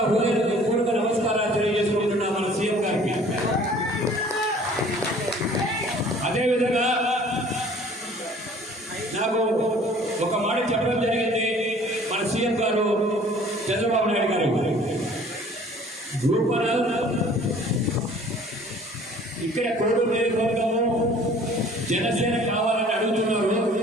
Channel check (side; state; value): both; normal; correlation 0.52